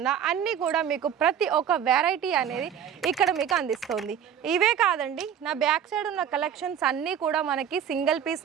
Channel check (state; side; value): quieter; left; 8.9 dB